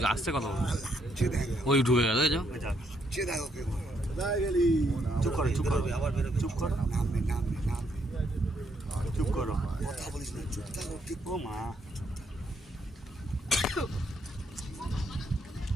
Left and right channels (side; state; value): both; normal; correlation 0.74